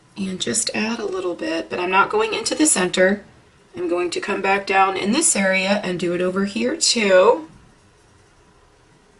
and just add a little bit, but I'm not going into the center. I'm going to come back down in this area and do it over here too.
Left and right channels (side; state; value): both; identical; correlation 1.00